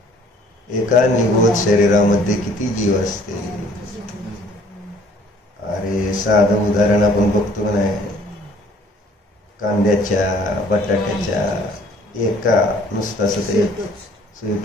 एका निगोद शरीरामध्ये किती जीव असते. अरे साधं उदाहरण आपण बघतो का नाही, कांद्याच्या बटाट्याच्या एका नुसतं असं ते सुई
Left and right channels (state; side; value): normal; both; correlation 0.57